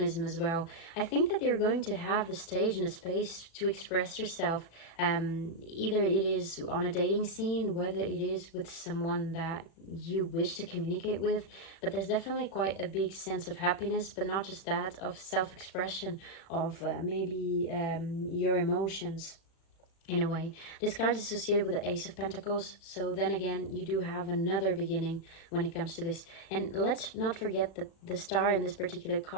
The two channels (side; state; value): right; late; 36 ms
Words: as well. I think that you're going to have the stage and the space to express yourself. Either it is on a dating scene, whether it is with someone that you wish to communicate with, but there's definitely quite a big sense of happiness, but not just that, of self-expression, of maybe your emotions. In a way, this card is associated with the Ace of Pentacles, so then again you do have another beginning when it comes to this. And let's not forget that the star in this particular